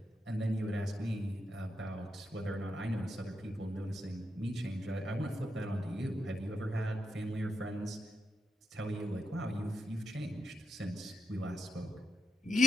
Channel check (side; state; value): both; normal; correlation 0.84